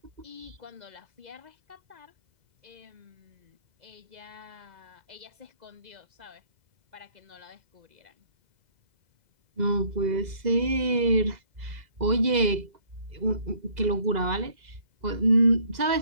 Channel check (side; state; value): left; late; 2.0 ms